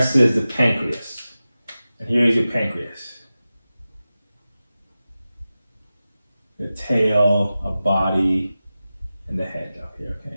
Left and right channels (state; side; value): inverted; both; correlation -0.95